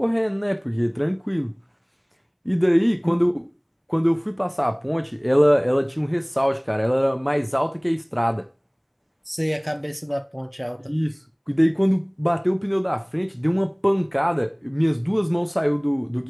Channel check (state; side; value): identical; both; correlation 1.00